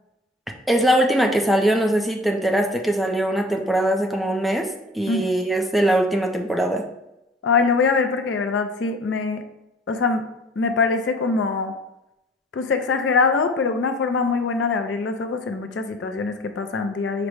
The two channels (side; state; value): both; normal; correlation 0.48